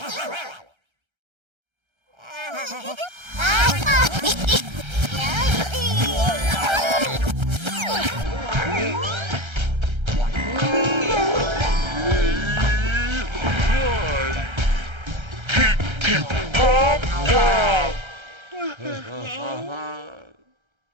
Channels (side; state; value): left; late; 1.3 ms